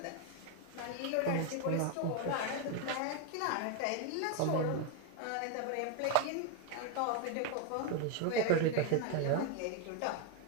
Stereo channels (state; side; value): different; both; correlation 0.01